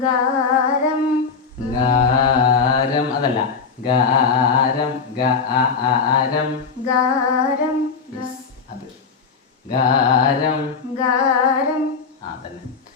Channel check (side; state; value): right; quieter; 5.3 dB